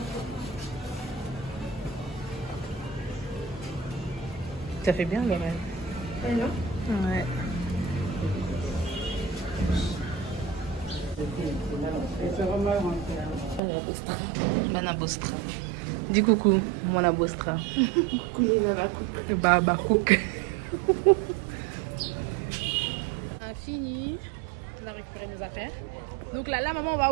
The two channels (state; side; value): drops out; left; at 13.6 s